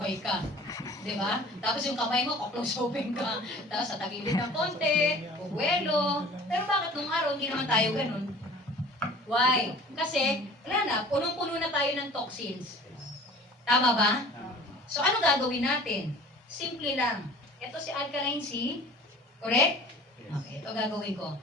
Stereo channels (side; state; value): both; normal; correlation 0.45